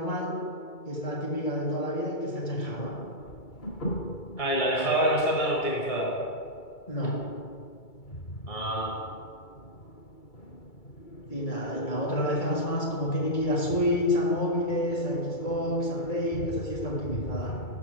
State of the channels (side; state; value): right; late; 2.3 ms